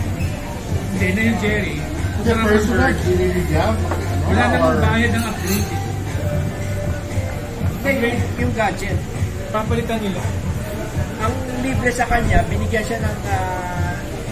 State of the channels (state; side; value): identical; both; correlation 1.00